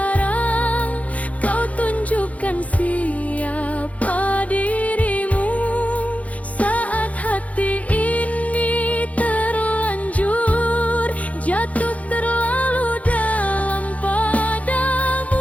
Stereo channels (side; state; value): right; late; 0.068 ms